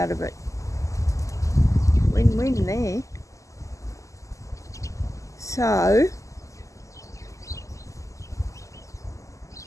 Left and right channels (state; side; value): late; right; 0.16 ms